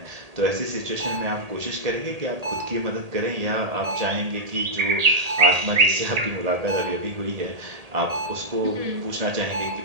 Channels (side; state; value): left; late; 1.8 ms